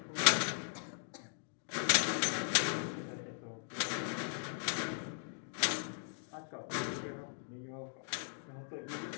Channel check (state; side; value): silent; right; digital silence